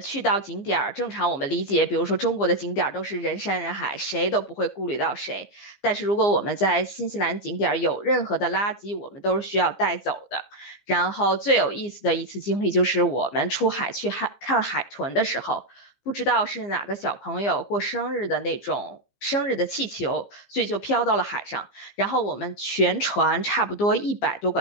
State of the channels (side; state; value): right; late; 15 ms